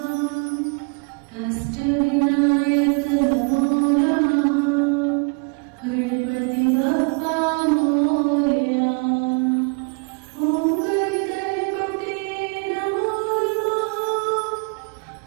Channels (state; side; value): quieter; left; 35.3 dB